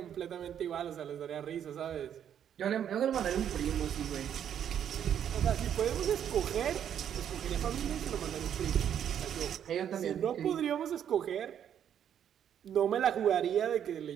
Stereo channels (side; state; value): left; quieter; 9.3 dB